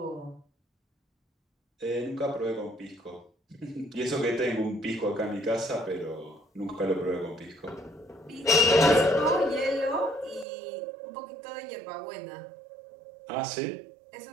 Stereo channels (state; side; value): drops out; left; at 10.5 s